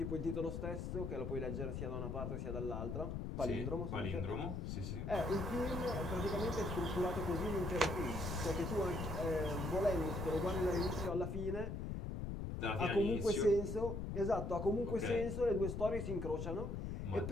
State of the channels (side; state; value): left; noise; rumble, 4 dB below the sound